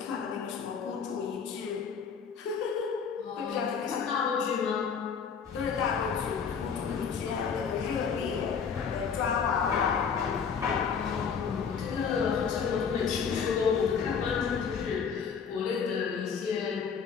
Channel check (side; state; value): right; quieter; 6.4 dB